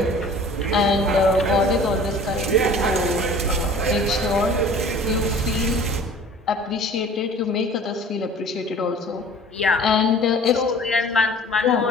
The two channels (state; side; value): normal; both; correlation 0.46